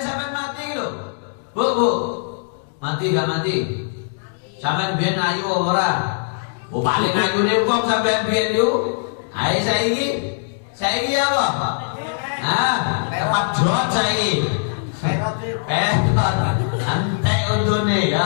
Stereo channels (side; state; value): right; silent; digital silence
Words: sampean mati lho. Bu. Mati gak mati? Sampean biyen ayu ora? Oh paling ayune wong sampean biyen yo. Ae saiki apa? Tepat jot saiki. Antek untune ya